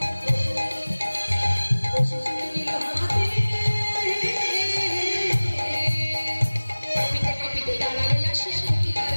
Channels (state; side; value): inverted; both; correlation -1.00